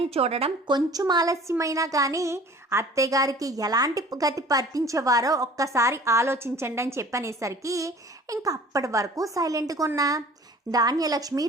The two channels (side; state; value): both; normal; correlation 0.47